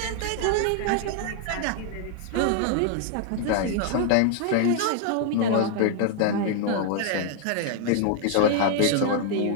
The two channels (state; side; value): different; both; correlation 0.00